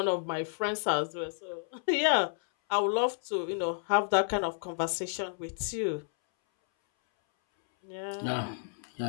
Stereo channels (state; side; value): silent; right; 57 dB below the other